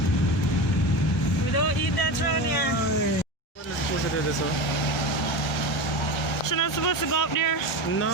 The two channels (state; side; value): normal; both; correlation 0.24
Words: We don't eat that around here. What is supposed to do this one? She's not supposed to go up there. No.